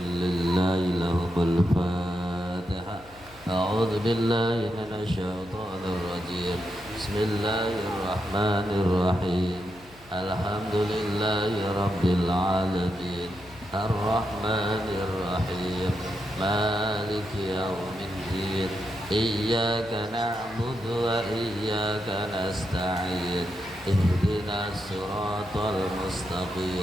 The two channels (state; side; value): noise; left; hum, 24 dB below the sound